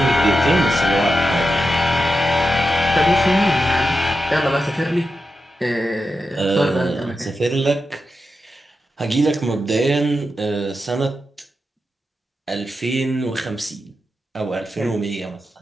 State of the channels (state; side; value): normal; both; correlation 0.89